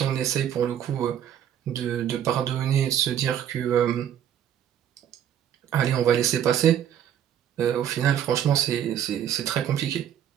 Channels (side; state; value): left; quieter; 9.9 dB